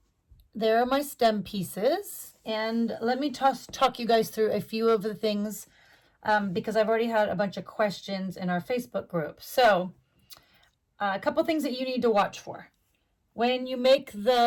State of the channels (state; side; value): identical; both; correlation 1.00